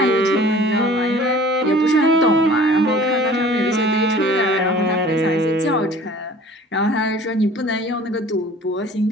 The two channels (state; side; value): normal; both; correlation 0.47